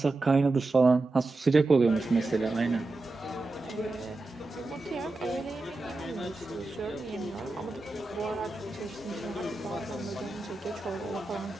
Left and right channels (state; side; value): quieter; left; 3.1 dB